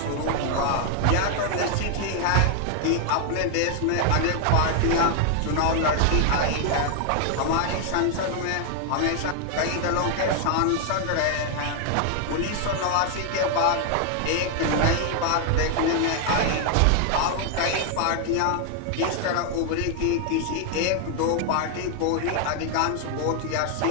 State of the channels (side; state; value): both; different; correlation 0.00